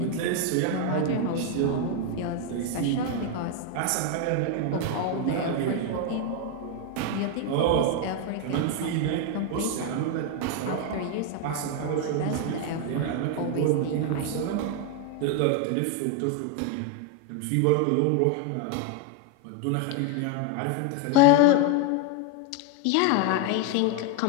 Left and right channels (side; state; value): both; different; correlation 0.01